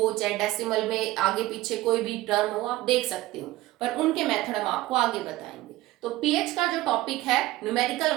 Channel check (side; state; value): left; quieter; 17.3 dB